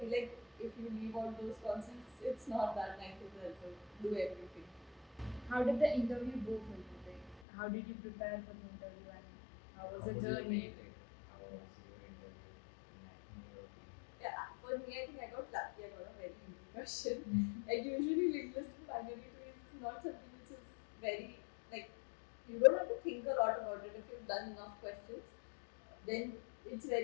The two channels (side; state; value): right; drops out; at 7.4 s